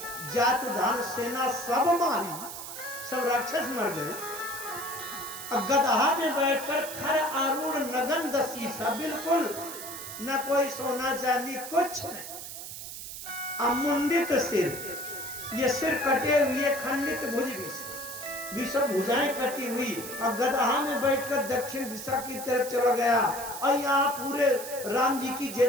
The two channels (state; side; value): noise; right; hiss, 10 dB below the sound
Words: जात धान सेना सब मारी, सब राक्षस मर गए। गदहा में बैठकर खर आरूढ़ नगन दसीसा, बिल्कुल न कोई सोना चांदी कुछ नहीं। अमुंडित सिर, ये सिर कटे हुए, खंडित भुज भी सब भुजाएं कटी हुई, और गदहा में बैठकर दक्षिण दिशा की तरफ चला गया। और यहाँ पूरे राम जी की जय